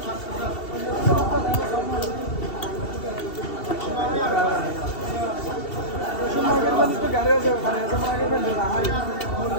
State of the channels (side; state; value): right; late; 2.7 ms